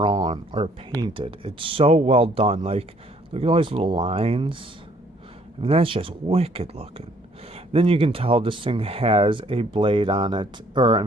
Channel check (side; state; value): both; normal; correlation 0.62